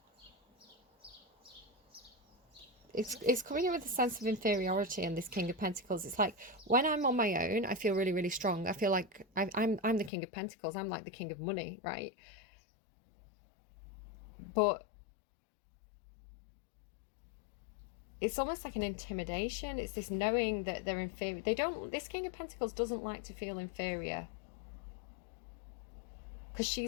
It's coming in with a sense of inferiority in this King of Pentacles. It's like, when I'm on my own, I feel really, really strong. I feel like I'm the King of Pentacles. I'm like the king of money, right? But it's almost like an intimidation. It's this knowing that they're inferior. This King of Pentacles doesn't like to feel inferior. Because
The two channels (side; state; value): right; drops out; at 10.1 s